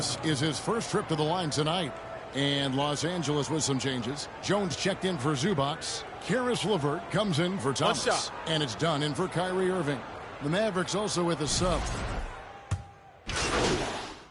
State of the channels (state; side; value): identical; both; correlation 1.00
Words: is his first trip to the line tonight. And Los Angeles with some changes. Jones checked in for Zubac. Karis LeVert comes in for Thomas. And it's done in for Kyrie Irving. The Mavericks also with a sub.